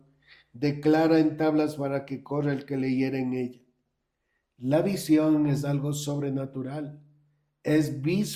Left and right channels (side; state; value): both; identical; correlation 1.00